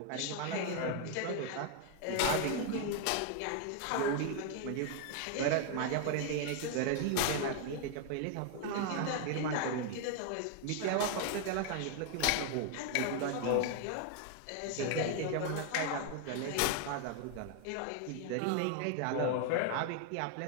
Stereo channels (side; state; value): both; different; correlation 0.01